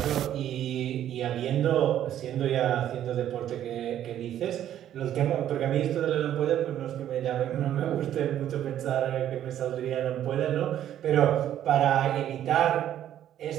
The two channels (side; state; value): left; quieter; 11.2 dB